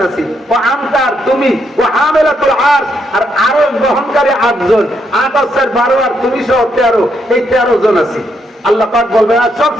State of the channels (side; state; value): both; normal; correlation 0.77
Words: আছি। ও আমতার তুমি, ও হামেলাতুল আরশ, আর আরশ বহনকারী 8 জন, 8 আর 12 আর তুমি সহ 13, এই 13 জন আছি। আল্লাহ পাক বলবেন আর সব